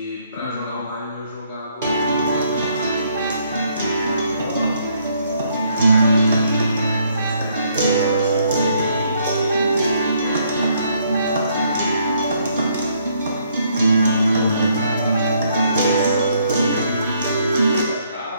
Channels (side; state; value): both; inverted; correlation -0.69